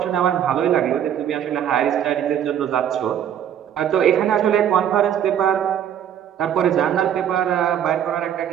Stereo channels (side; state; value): left; quieter; 9.7 dB